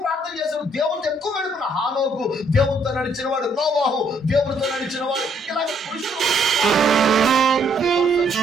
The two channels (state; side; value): normal; both; correlation 0.68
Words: ప్రార్థన చేశారు. దేవునితో ఎక్కువ గడుపున హానోకు దేవునితో నడిచిన వాడు, నోవాహు దేవునితో నడిచిన వాడు, ఇలాగ పురుషులు